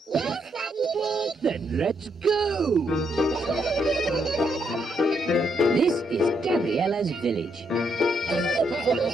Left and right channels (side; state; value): both; normal; correlation 0.76